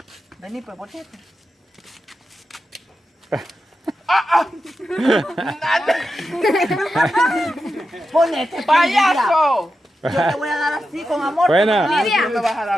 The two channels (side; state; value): both; normal; correlation 0.89